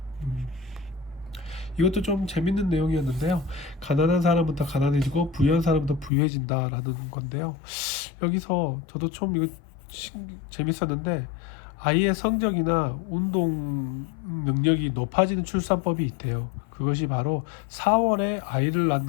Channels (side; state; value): right; drops out; at 6.1 s